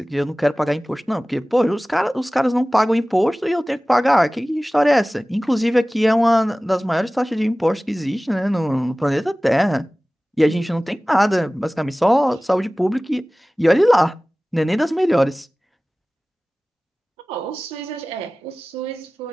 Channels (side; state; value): both; normal; correlation 0.98